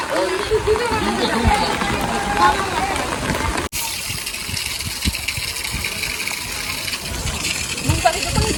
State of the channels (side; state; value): both; identical; correlation 1.00